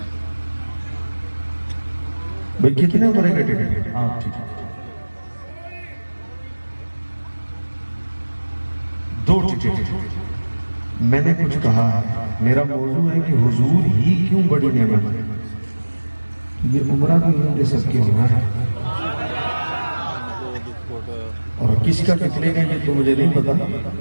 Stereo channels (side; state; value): both; inverted; correlation -1.00